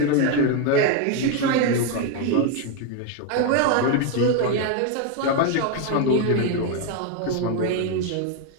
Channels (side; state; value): both; different; correlation 0.01